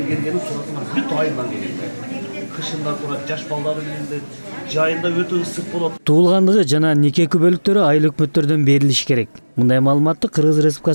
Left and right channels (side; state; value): both; inverted; correlation -1.00